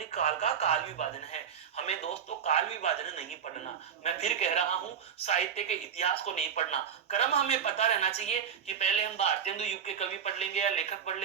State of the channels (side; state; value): left; quieter; 7.8 dB